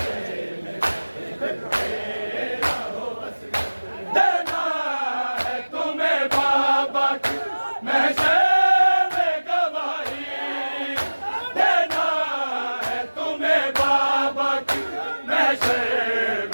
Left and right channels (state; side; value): inverted; both; correlation -1.00